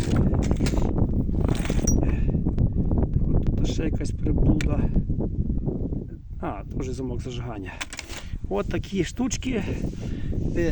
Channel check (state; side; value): identical; both; correlation 1.00